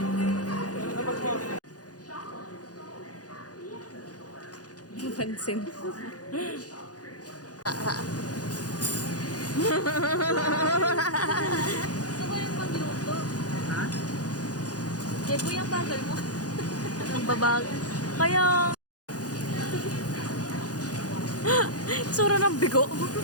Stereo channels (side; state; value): right; late; 0.68 ms